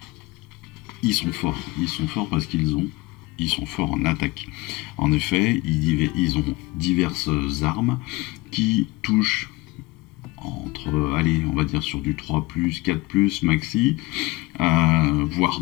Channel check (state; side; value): quieter; right; 22.0 dB